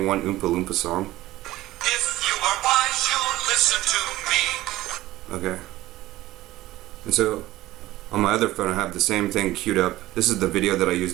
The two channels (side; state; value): left; quieter; 16.6 dB